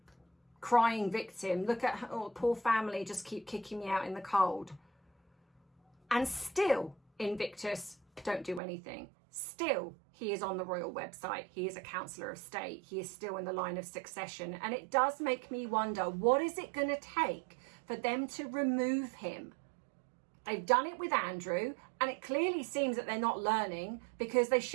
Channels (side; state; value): left; drops out; at 8.6 s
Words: crying victim. Look at, oh, poor family, just keep kicking me out in the cold. And still, Invictus don't do anything. Still, he is on the royal website. He is a councillor of state. He is still in the line of succession. And it does make me wonder, what is it going to take for them to remove him? They've done it with Andrew, and it clearly seems that they're not learning, because they